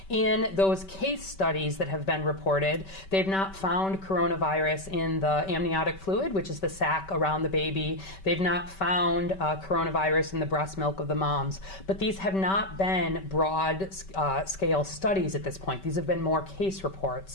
In those case studies that have been reported, they've not found coronavirus in the amniotic fluid, which is the sac around the baby. They've not found coronavirus in the breast milk of the mom. But these have not been broad scale studies at this point. These have been more case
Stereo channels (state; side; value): late; right; 5.2 ms